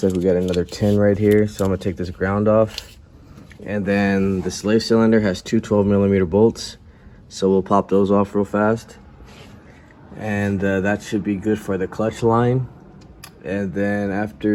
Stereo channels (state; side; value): identical; both; correlation 1.00